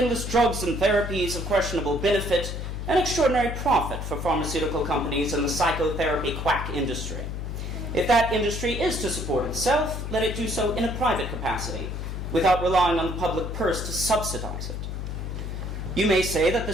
drugs and therapies of questionable benefit and extraordinary profit for pharmaceutical companies and the psychotherapy quack industry. If that industry is to support itself, let it do so in a private capacity, without relying on the public purse to subsidize it. You may say that the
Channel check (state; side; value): noise; left; hum, 5 dB below the sound